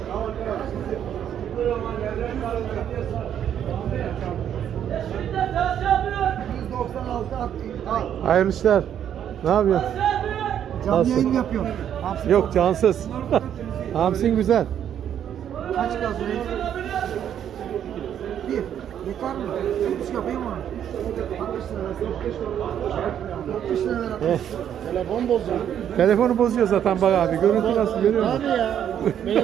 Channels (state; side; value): quieter; left; 9.6 dB